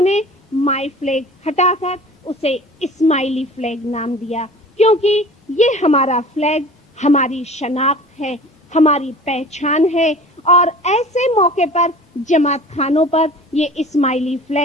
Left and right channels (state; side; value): normal; both; correlation 0.42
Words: مائی فلیگ ہٹا کر اسے اسماعیلی فلیگ نام دیا، کیونکہ یہ ہمارا فلیگ ہماری شناخت ہے، ہماری پہچان ہے. اور ایسے موقع پر جماعت خانوں پر یہ اسماعیلی